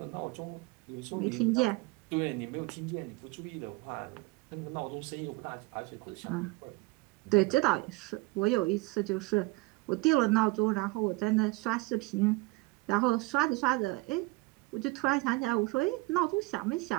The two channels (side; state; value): left; quieter; 23.5 dB